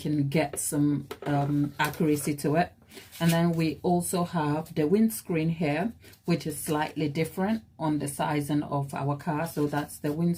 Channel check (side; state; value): both; identical; correlation 1.00